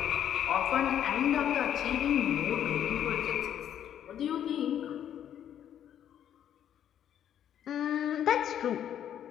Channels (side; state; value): right; quieter; 10.0 dB